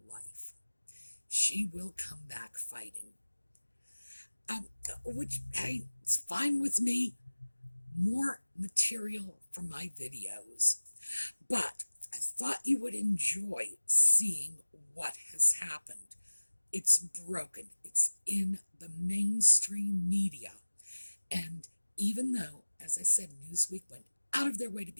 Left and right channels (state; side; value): inverted; both; correlation -1.00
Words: life. She will come back fighting. Which, hey, it's fine with me. More material for my videos. But I thought you would enjoy seeing what has happened. It's broken. It's in the mainstream media. And even though, as I said, Newsweek went out of their way to